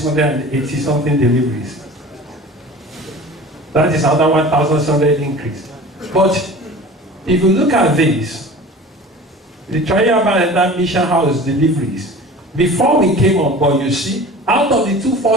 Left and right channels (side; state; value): both; normal; correlation 0.40